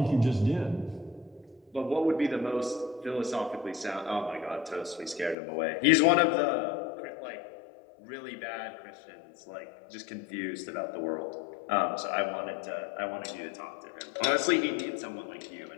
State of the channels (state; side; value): drops out; right; at 5.4 s